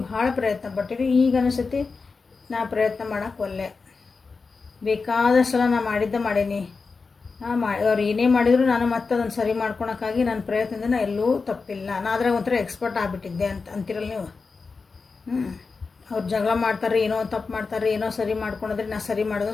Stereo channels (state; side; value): quieter; right; 4.5 dB